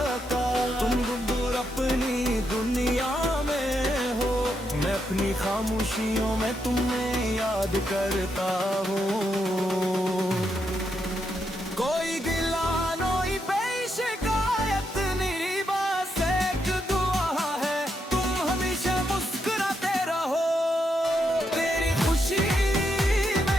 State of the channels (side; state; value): both; normal; correlation 0.81